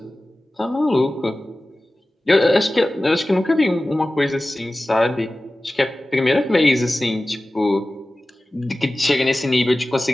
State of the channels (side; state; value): both; normal; correlation 0.96